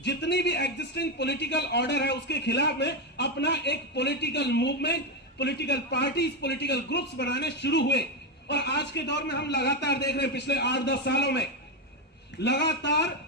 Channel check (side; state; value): both; normal; correlation 0.09